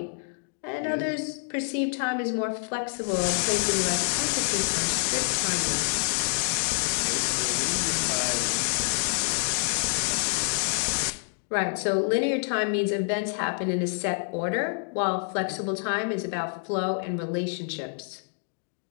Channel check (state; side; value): silent; right; digital silence